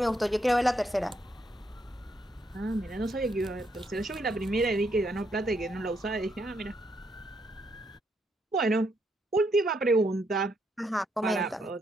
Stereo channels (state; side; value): normal; both; correlation 0.76